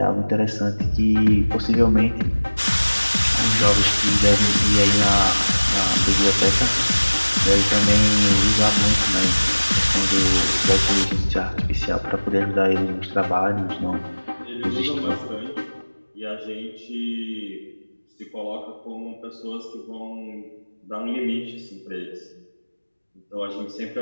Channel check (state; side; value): inverted; both; correlation -1.00